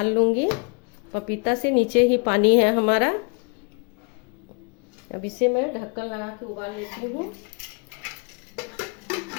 लूँगी। पपीता से नीचे ही पानी है हमारा। अब इसे मैं ढक्कन लगा के उबाल लेती हूँ।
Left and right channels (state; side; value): quieter; right; 35.0 dB